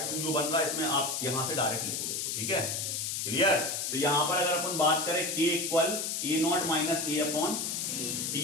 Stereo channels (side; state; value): left; noise; hiss, 2 dB below the sound